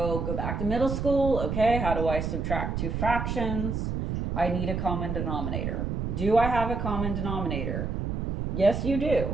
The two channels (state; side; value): noise; right; rumble, 2 dB below the sound